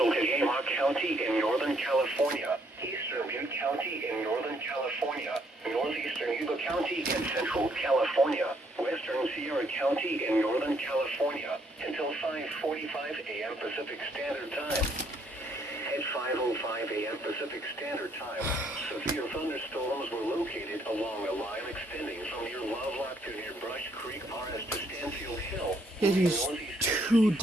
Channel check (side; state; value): both; normal; correlation 0.69